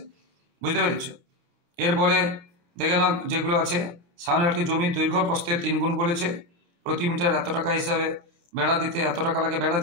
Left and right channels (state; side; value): late; left; 28 ms